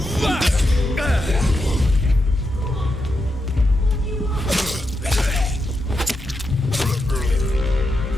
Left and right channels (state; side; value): normal; both; correlation 0.86